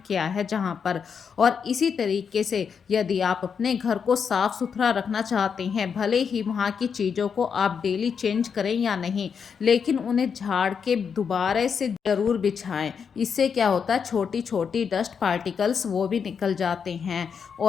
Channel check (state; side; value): quieter; right; 6.6 dB